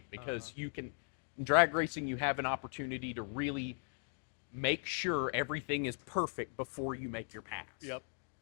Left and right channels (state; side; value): silent; right; 52 dB below the other